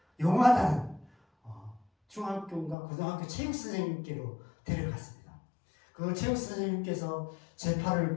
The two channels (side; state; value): right; drops out; at 2.8 s